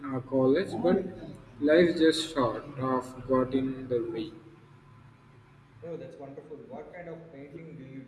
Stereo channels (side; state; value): both; identical; correlation 1.00